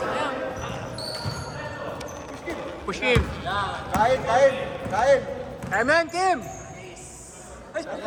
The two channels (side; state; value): both; identical; correlation 1.00